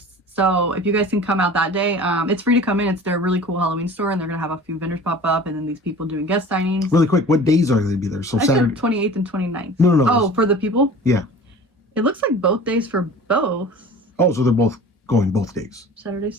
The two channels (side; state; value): both; normal; correlation 0.41